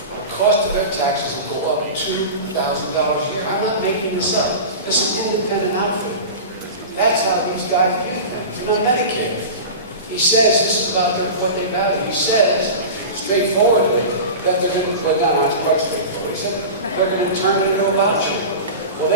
the cost of their taxes will go up $2,000 a year. I'm not making this up. This is an independent outfit. That's how these guys view things. And on Medicare, he says this is about what they value. He says straightforwardly that they're going to put down, not quite straightforward. He said they're going to turn it into a voucher. Well,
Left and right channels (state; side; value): inverted; both; correlation -0.30